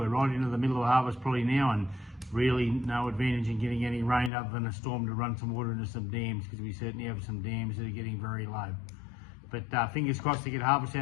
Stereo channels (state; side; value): drops out; right; at 4.3 s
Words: right into the middle of harvest probably now, and really no advantage in getting any rain other than a storm to run some water into some dams, because we certainly have some dams that are getting very low. But fingers crossed to get harvest